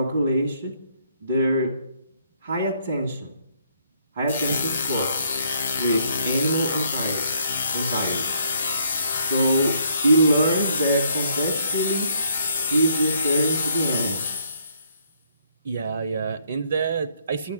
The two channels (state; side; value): inverted; both; correlation -0.69